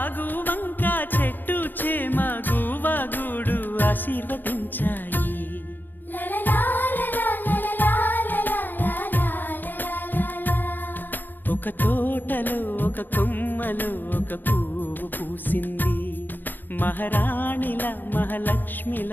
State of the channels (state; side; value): late; right; 0.090 ms